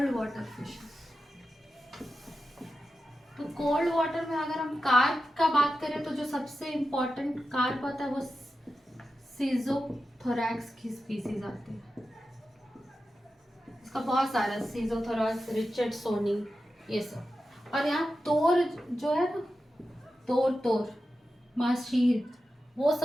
water fishes. तो कोल्ड वाटर में अगर हम कार्प का बात करें तो जो सबसे इम्पोर्टेंट कार्प आता है वो सीजोथोरैक्स की स्पीसीज आती है। इसका बहुत सारा, सीजोथोरैक्स, रिचर्डसोनी, ये सब। और यहाँ तोर जो है ना, तोर माशीर, वो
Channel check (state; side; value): normal; both; correlation 0.91